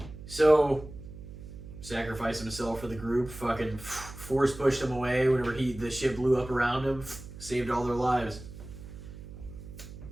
So, sacrificed himself for the group, fucking force pushed him away whenever the ship blew up around him, saved all their lives.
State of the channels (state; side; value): noise; right; hum, 14 dB below the sound